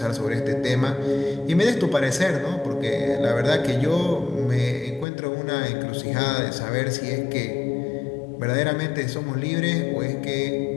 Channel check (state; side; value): drops out; right; at 5.1 s